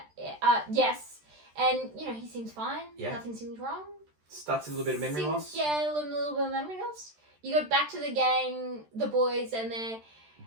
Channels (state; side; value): late; left; 13 ms